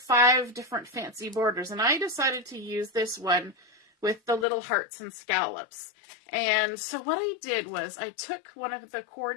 different fancy borders. And I decided to use this one with the little hearts and scallops. And so what I did was I took one of the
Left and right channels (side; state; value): right; drops out; at 4.5 s